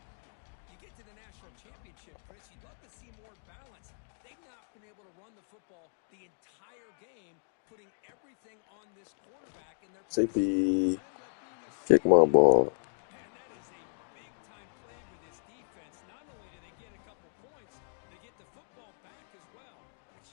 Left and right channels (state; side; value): silent; right; digital silence